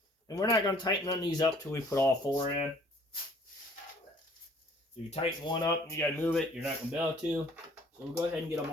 And we're not going to tighten none of these up till we put all four in. If you tighten one up and you got to move it, you're not going to be able to. So we'll go ahead and get them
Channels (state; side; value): normal; both; correlation 0.56